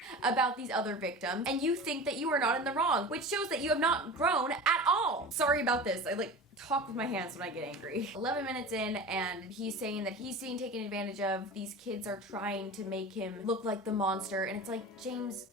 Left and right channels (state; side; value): normal; both; correlation 0.33